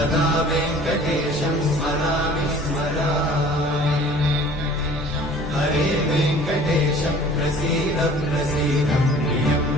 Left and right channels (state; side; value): normal; both; correlation 0.48